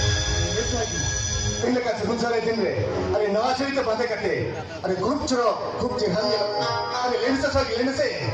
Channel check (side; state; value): both; identical; correlation 1.00